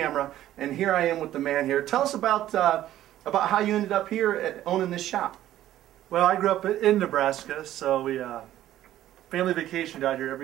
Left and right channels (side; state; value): left; quieter; 13.1 dB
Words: and here I am with the man here. Tell us about how you ended up here at owning this shop. Well, I grew up in Nebraska, so we family vacationed out here